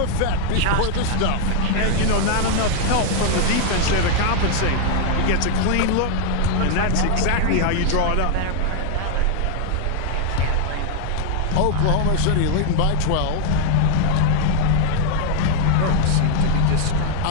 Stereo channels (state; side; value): different; both; correlation 0.00